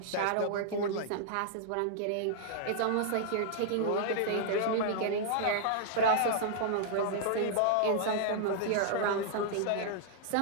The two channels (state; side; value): different; both; correlation -0.01